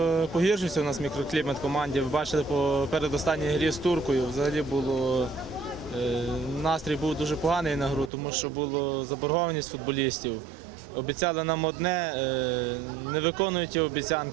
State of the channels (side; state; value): left; drops out; at 8.1 s